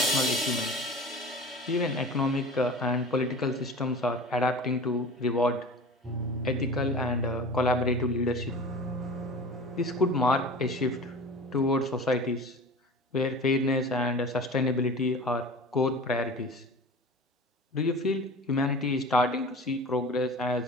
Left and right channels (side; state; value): both; normal; correlation 0.37